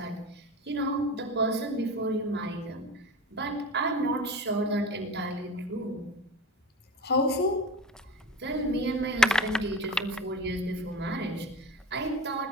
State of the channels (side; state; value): both; normal; correlation 0.31